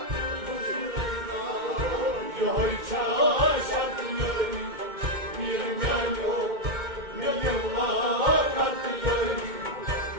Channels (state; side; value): late; left; 2.1 ms